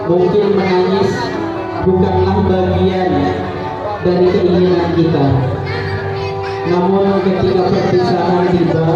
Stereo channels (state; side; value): identical; both; correlation 1.00